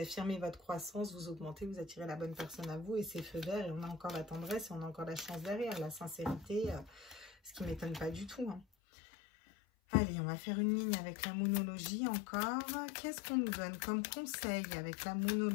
votre croissance, vous augmentez, vous attirez la bonne personne à vous et c'est feu vert et on a encore la tendresse et on a encore la chance derrière, la sincérité, ce qui ne m'étonne pas du tout. Hein. Allez, on va faire une ligne avec la moonologie encore. Qu'est-ce qu'on nous donne comme conseil avec la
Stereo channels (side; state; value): right; drops out; at 8.7 s